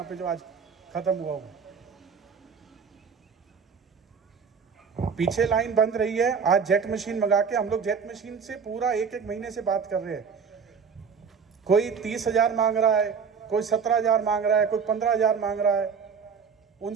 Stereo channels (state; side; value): quieter; left; 6.1 dB